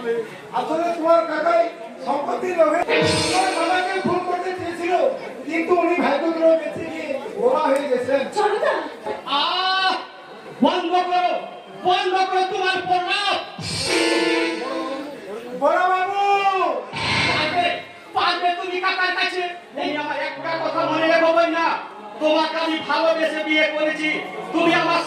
আসলে তোমার কাকাই সম্পত্তির লোভে তোমার বাবাকে খুন করতে চেয়েছিল কিন্তু উনি ভাগ্যক্রমে বেঁচে গিয়ে বোমা হয়ে গেছেন বন্ধ করো বন্ধ করো তোমার প্রলাপ। বড় বাবু পারবে পারবে তুমি কাকার কাছে। এই আমার একটা কথা মনে রেখো না, তোমাকে আমি ভালোবেসে বিয়ে করেছি, তুমি আমার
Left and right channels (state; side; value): identical; both; correlation 1.00